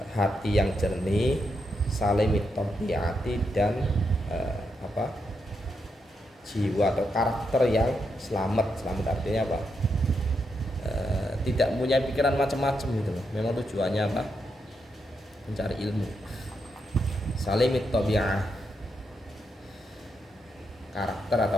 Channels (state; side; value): normal; both; correlation 0.82